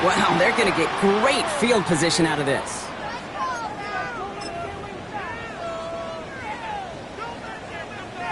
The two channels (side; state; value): both; identical; correlation 1.00